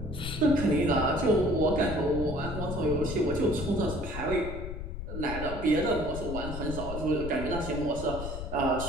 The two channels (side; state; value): left; noise; rumble, 7 dB below the sound